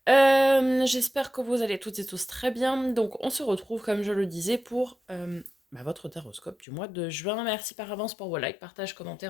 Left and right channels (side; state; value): right; drops out; at 6.7 s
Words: J'espère que vous allez toutes et tous très bien. Donc on se retrouve, comme je le disais, pour votre Taroscope du mois de juin. Merci par avance pour vos likes, partages,